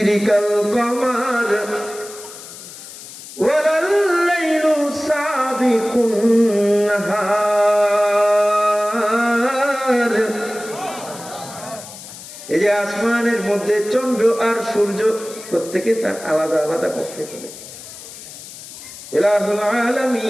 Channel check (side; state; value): left; noise; hiss, 15 dB below the sound